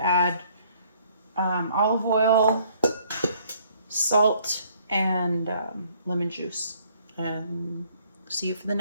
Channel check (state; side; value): inverted; both; correlation -0.62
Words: olive oil, salt, and lemon juice. And see you for the